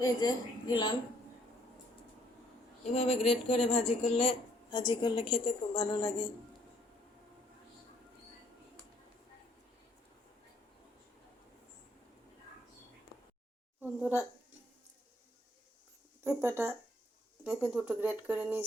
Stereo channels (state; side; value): normal; both; correlation 0.66